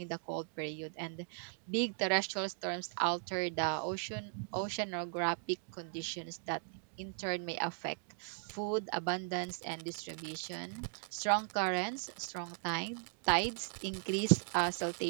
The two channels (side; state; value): left; silent; 53 dB below the other